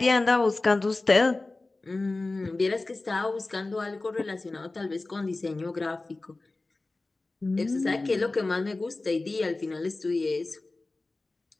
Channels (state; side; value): quieter; right; 3.2 dB